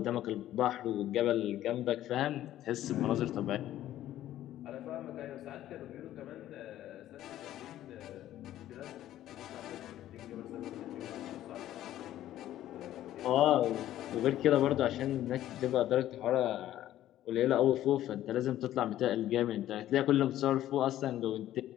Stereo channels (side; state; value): right; quieter; 13.1 dB